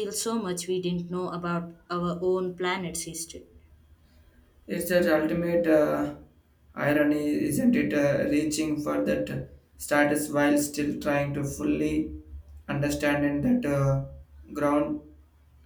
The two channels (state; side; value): identical; both; correlation 1.00